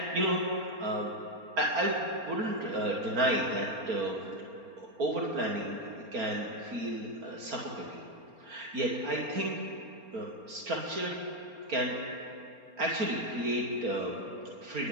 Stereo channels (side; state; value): left; late; 4.3 ms